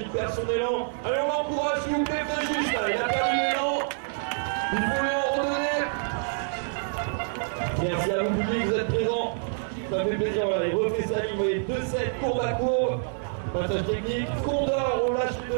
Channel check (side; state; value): left; silent; digital silence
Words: perd son élan. Allez, on l'encourage, s'il vous plaît, faites juste là. Il a perdu l'élan. Il faut lui en redonner. Merci à vous, public, vous êtes présents. Ça fait plaisir, voilà, il refait sa ligne, vous voyez, 2-7, courbe à courbe. Passage technique, Condor, on lâche les